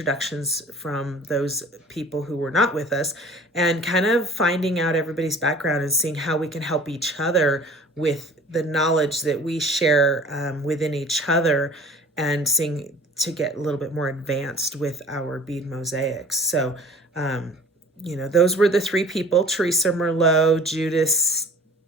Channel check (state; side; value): normal; both; correlation 0.47